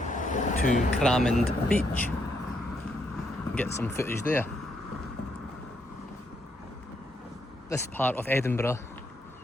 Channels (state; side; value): normal; both; correlation 0.76